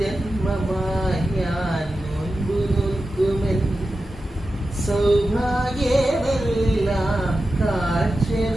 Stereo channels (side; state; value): both; normal; correlation 0.92